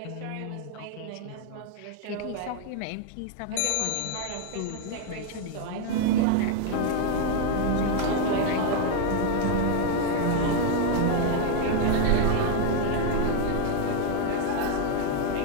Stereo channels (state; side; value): different; both; correlation 0.01